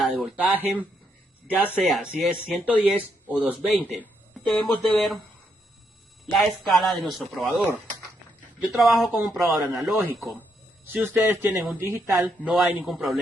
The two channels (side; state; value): both; normal; correlation 0.77